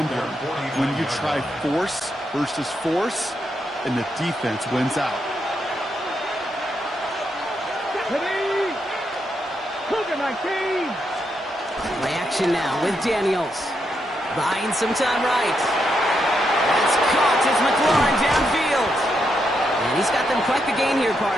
when you try force versus force, and the defense wins out. Play action now with Daniels. Buying some time right. That's caught as McLaurin downfield. And he's got them quite the gain here,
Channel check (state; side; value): normal; both; correlation 0.81